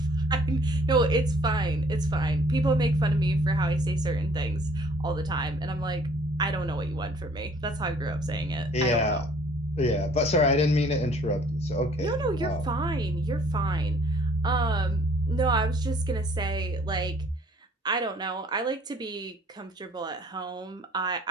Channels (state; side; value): normal; both; correlation 0.57